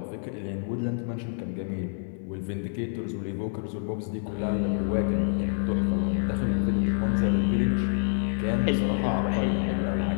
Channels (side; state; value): right; silent; digital silence